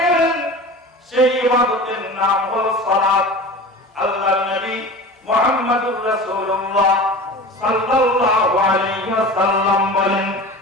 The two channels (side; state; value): both; normal; correlation 0.35